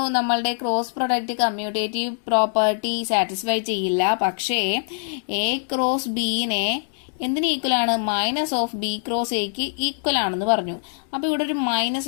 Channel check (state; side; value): silent; right; digital silence